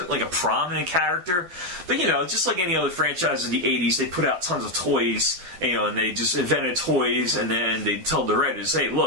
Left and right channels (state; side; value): late; left; 12 ms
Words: like a prominent character. But, just like any other franchise in the 80s, they put out tons of toys, and they just invented toys, and then they tell the writers, hey,